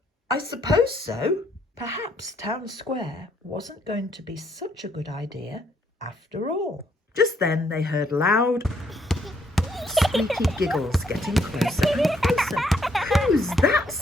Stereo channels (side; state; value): both; normal; correlation 0.70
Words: "I suppose so." Perhaps Town Square wasn't going to be such a good idea after all. Just then they heard loud, squeaky giggles getting closer and closer. "Who's that?"